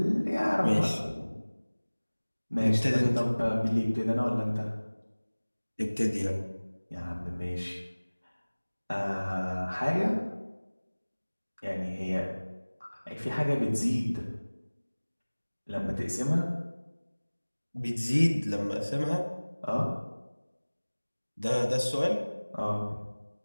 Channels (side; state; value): both; inverted; correlation -1.00